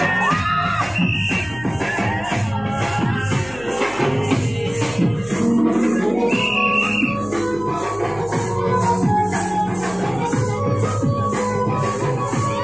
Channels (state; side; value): noise; left; hum, 19 dB below the sound